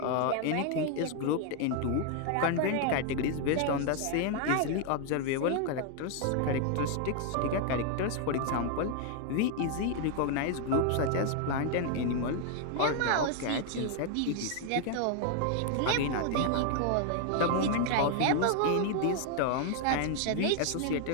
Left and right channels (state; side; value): different; both; correlation 0.00